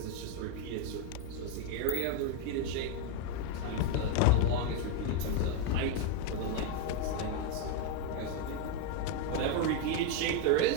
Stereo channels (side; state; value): both; different; correlation 0.01